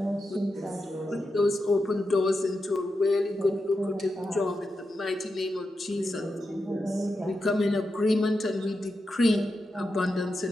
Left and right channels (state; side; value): normal; both; correlation 0.88